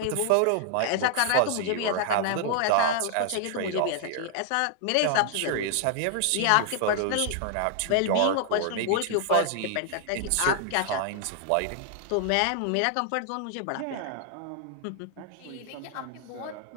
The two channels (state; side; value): different; both; correlation 0.00